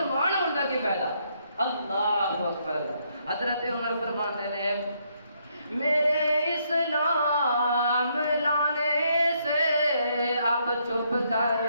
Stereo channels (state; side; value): inverted; both; correlation -0.73